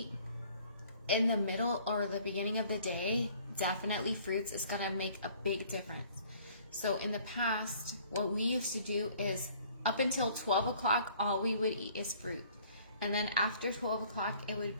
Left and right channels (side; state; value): both; inverted; correlation -0.56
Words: in the middle or the beginning of the day, definitely fruits is going to make a big difference. So in the past, what we used to do is up until 12 o'clock, all we would eat is fruit. And then after 12 o'clock, it would